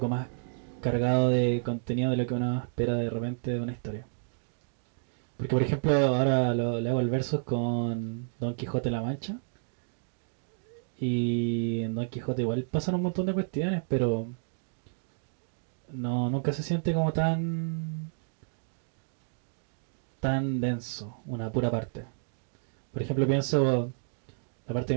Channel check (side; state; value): left; silent; digital silence